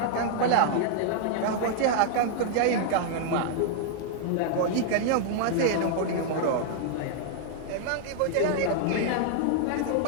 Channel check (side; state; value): both; different; correlation -0.01